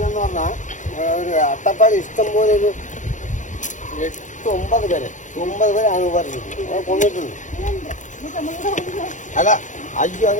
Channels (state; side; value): late; right; 0.36 ms